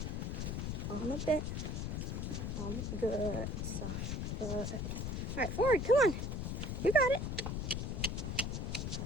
On the bit. Good. Soft. Good. All right, forward. Come on. You got it.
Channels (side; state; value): left; noise; rumble, 2 dB below the sound